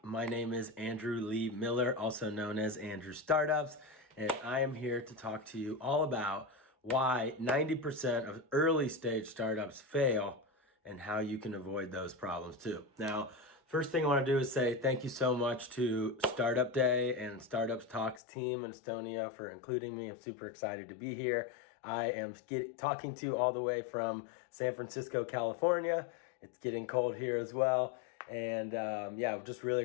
My name is Andrew Lee Miller, also known as Andrew Startups, and I am here to talk to you all about why 90% of early stage startups fail and how you can avoid those problems too. Now, first thing I want to do is say thank you so much to Startup Day and Startups Talks team in Estonia for including me. I'm super excited to be here. I am talking to you all the way from San Francisco, California. It's getting cold here as well. And I'm just really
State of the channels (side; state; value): right; drops out; at 18.2 s